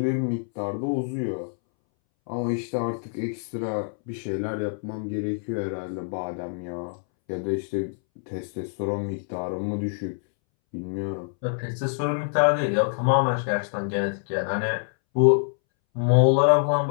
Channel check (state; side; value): silent; right; 61 dB below the other